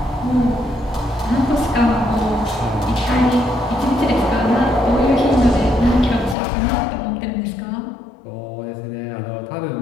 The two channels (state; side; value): drops out; right; at 6.4 s